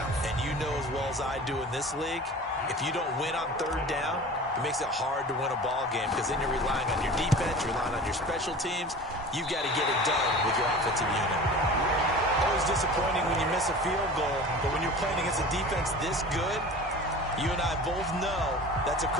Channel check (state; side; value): normal; both; correlation 0.38